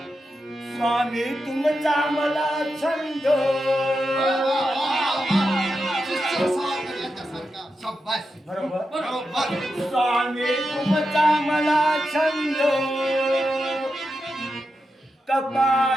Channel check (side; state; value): both; normal; correlation 0.88